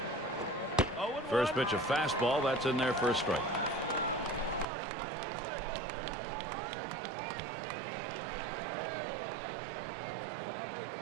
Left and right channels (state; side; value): drops out; left; at 4.7 s